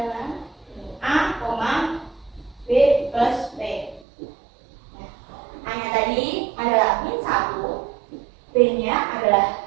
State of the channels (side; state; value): left; drops out; at 4.0 s